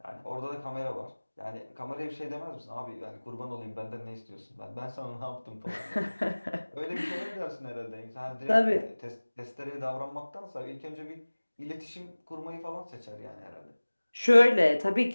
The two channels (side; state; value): both; inverted; correlation -1.00